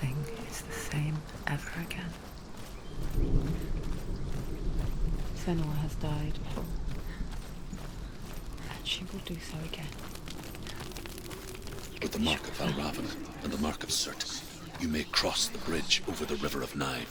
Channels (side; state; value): both; identical; correlation 1.00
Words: is the same ever again. Senua has died before, and she will do so again. With the mark of Valravyn and the mark of Surtr, you may cross the bridge over the River of